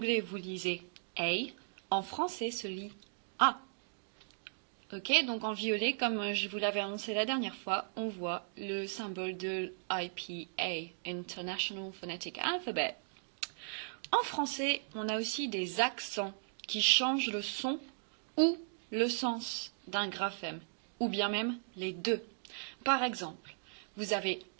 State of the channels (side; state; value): left; silent; digital silence